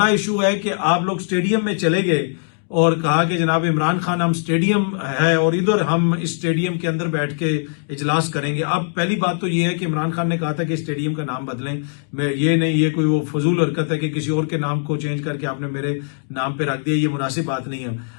इशू है कि आप लोग स्टेडियम में चले गए और कहा कि जनाब इमरान खान हम स्टेडियम है और इधर हम इस स्टेडियम के अंदर बैठ के इजलास करेंगे। अब पहली बात तो ये है कि इमरान खान ने कहा था कि स्टेडियम का नाम बदलें, मैं ये नहीं, ये कोई वो फजूल हरकत है कि किसी और के नाम को चेंज करके आपने मेरे नाम पे रख दिया, ये मुनासिब बात नहीं है।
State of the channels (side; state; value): right; silent; digital silence